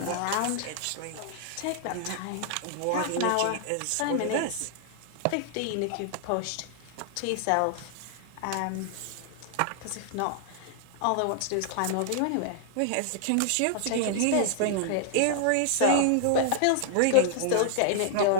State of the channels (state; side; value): different; both; correlation 0.00